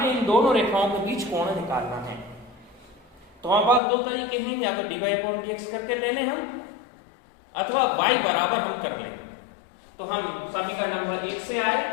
इन दोनों रेखाओं के बीच कोण निकालना है। तो हमारे पास दो तरीके हैं, या तो dy अपॉन dx करके ले लें हम, अथवा y बराबर हम कर लें। तो हम समीकरण नंबर 1 से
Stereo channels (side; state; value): right; drops out; at 3.8 s